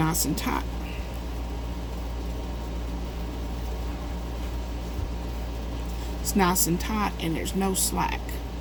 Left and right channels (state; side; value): identical; both; correlation 1.00